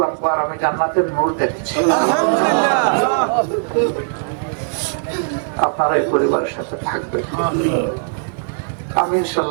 আকবার, আমি জান্নাতের নূর দেখেছি। আপনারা এই পরিবারের সাথে থাকবেন, আমি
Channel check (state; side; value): silent; left; 57 dB below the other